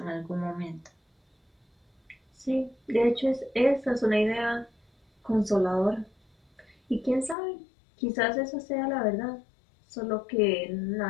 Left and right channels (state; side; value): drops out; right; at 7.4 s